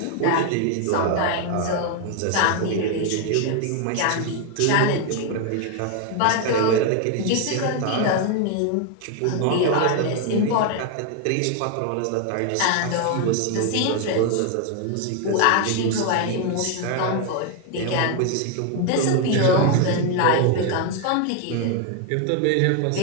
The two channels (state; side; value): different; both; correlation 0.01